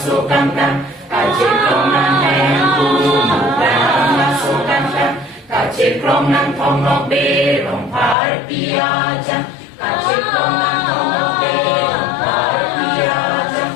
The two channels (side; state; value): right; drops out; at 8.2 s